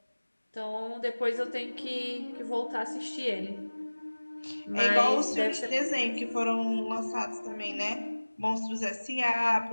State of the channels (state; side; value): inverted; both; correlation -1.00